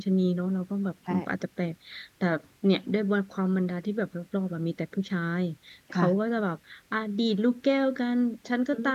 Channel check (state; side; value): identical; both; correlation 1.00